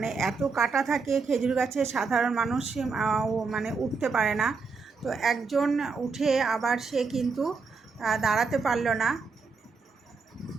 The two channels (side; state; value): left; quieter; 4.7 dB